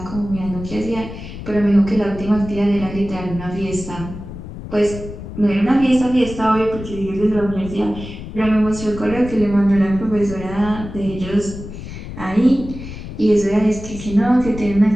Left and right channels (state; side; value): noise; left; rumble, 11 dB below the sound